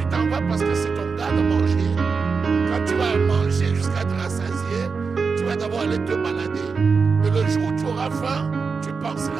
t'en vas parce que c'est ton gars de manger, quand tu vas manger, la fin, tu penseras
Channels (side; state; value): left; quieter; 5.0 dB